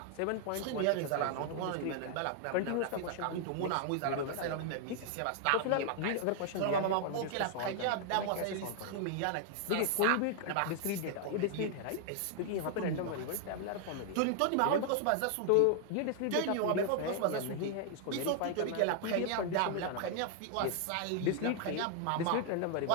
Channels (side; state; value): both; different; correlation 0.00